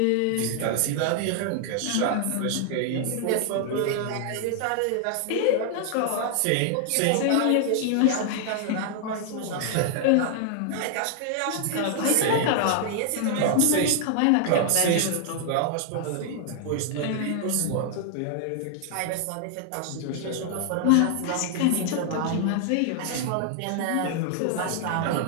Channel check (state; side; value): different; both; correlation 0.00